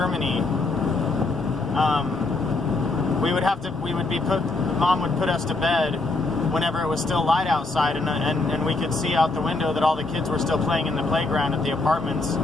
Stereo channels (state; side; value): quieter; right; 3.2 dB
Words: Mom would put us to bed whenever it was still light outside, and we could see out the window that all the kids were still playing in the playground at the apartments.